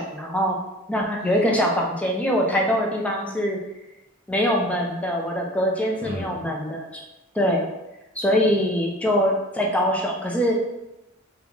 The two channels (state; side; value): normal; both; correlation 0.44